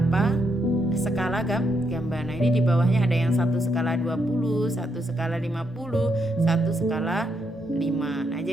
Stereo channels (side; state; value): both; normal; correlation 0.78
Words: skala gambar. Nah, ini di bawahnya ada yang 1 skala 20, 1 skala 50, 1 skala 5. Nah,